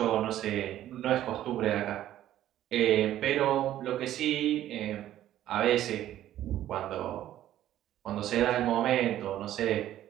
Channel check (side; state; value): left; quieter; 12.6 dB